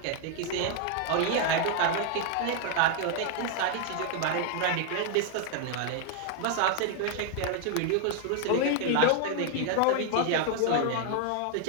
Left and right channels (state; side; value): different; both; correlation 0.00